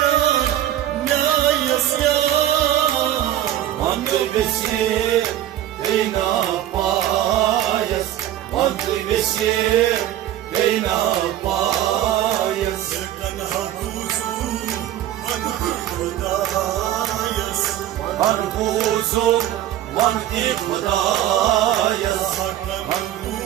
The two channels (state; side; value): quieter; left; 12.4 dB